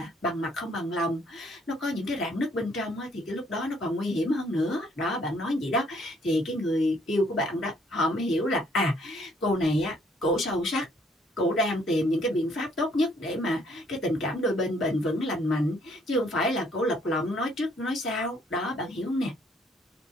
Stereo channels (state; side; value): normal; both; correlation 0.65